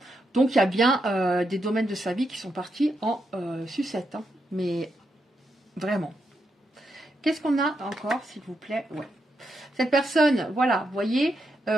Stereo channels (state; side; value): normal; both; correlation 0.83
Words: Donc, il y a bien des domaines de sa vie qui sont partis en sucette. Hein. Mais vraiment. Qu'est-ce qu'on a encore, s'il vous plaît? Ouais. Cette personne, voilà, vous voyez,